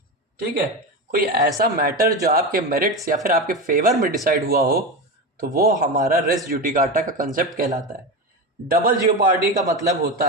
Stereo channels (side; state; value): both; normal; correlation 0.19